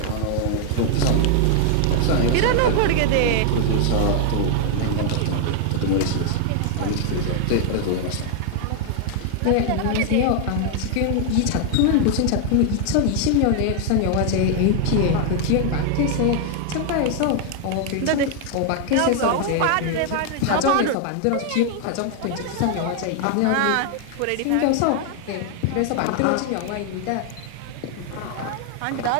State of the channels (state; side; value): different; both; correlation 0.00